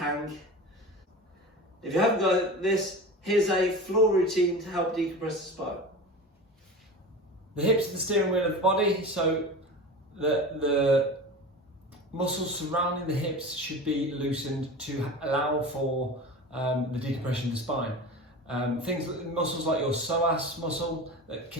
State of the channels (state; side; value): normal; both; correlation 0.31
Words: If you haven't got this, here's a floor routine to help decompress the spine. The hips are the steering wheel of the body, so the muscles surrounding the hips should be loosened to allow for the decompression of the spine. Muscles like your psoas muscle that